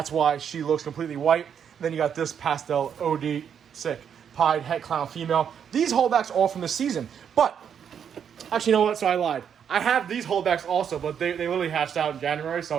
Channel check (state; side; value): quieter; left; 8.0 dB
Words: why she looks completely white. And then you got this pastel OD sick Pied Het Clown female. These holdbacks all from this season. But, actually, you know what? So I lied. I have these holdbacks also, but they literally hatched out in January,